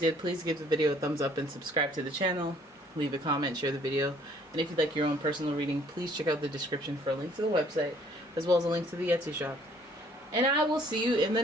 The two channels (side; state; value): both; normal; correlation 0.60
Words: please give the video a thumbs up and subscribe to the channel. Leave a comment, share the video. And if you'd like your own personal reading, please check out the description for a link to the website, as well as a link to the Etsy shop. And I will see you in the